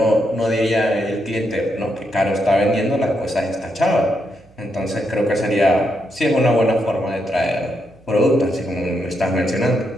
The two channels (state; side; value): noise; right; hum, 29 dB below the sound